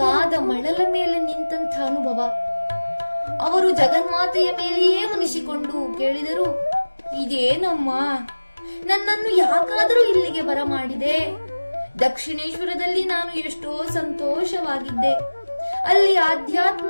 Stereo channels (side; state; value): both; inverted; correlation -1.00